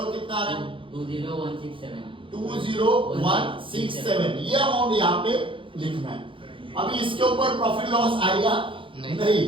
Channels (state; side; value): late; left; 0.25 ms